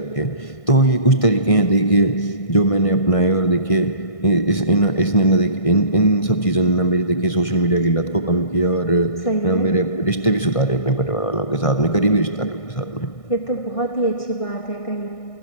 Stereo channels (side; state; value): right; late; 1.6 ms